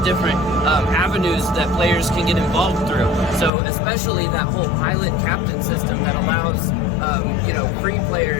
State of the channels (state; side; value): drops out; right; at 3.5 s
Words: avenues that players can get involved through. So especially that whole pilot captain system that allows free